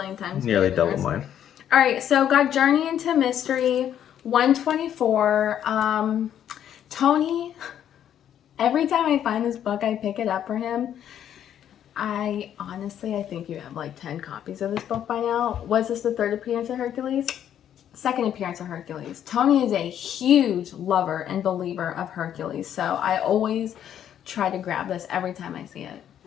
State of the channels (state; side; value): quieter; right; 10.1 dB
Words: times nearly double mine. All right, so got Journey into Mystery 124. Tony, every time I find this book, I pick it up for him. I think you have like 10 copies of this book by now. Was this the third appearance of Hercules? Second appearance of Hercules. Tony is a huge lover and believer of Hercules, so I always try to grab this every time I see it.